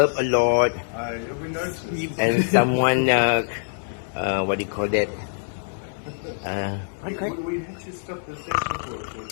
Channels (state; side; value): silent; right; 62 dB below the other